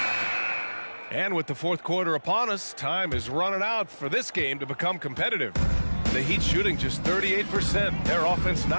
And with the fourth quarter upon us, time is running out for this game to become competitive. The Heat shooting just 38%. Their offense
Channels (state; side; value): inverted; both; correlation -1.00